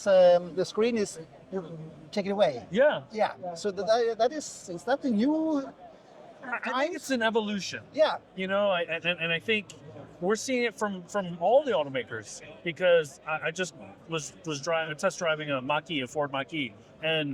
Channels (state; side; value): identical; both; correlation 1.00